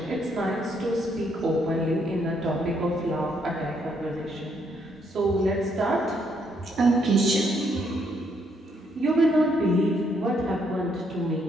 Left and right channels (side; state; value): both; normal; correlation 0.72